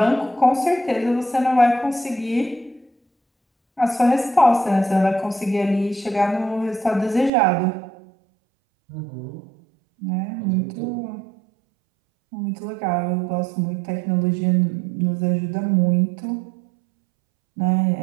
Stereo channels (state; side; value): drops out; left; at 7.3 s